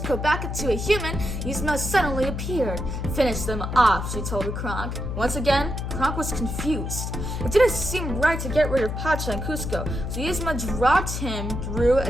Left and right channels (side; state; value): left; noise; hum, 4 dB below the sound